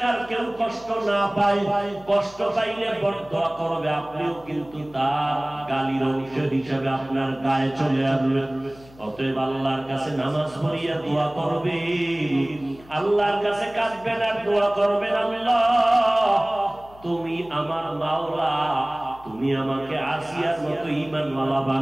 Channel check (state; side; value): noise; left; hum, 23 dB below the sound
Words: কেউ কষ্ট না পায়, কষ্ট পাইলে বরদোয়া করবে, আপনিও কিন্তু তার গালির অংশ হিসাবে আপনার গায়ে চলে আসবেন। অতএব আল্লাহর কাছে নামাজ পড়িয়া দোয়া করবেন, আল্লাহর কাছে কাঁদবেন আর দোয়া করবেন, আল্লাহ তুমি আমার মাওলা, তুমি আমাকে আসিয়ার মতো ঈমানওয়ালা